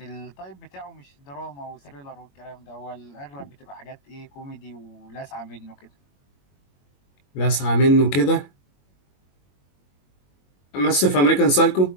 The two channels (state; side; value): late; right; 21 ms